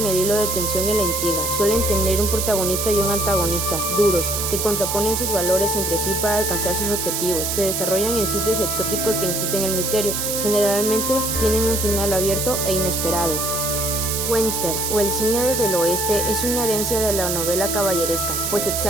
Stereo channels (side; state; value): right; noise; hiss, 1 dB below the sound